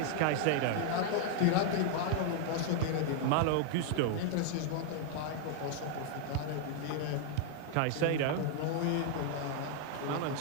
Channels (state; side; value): different; both; correlation 0.00